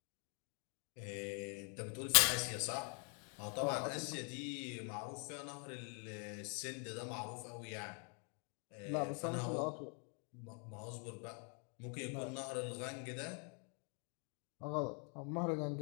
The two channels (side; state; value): right; quieter; 39.8 dB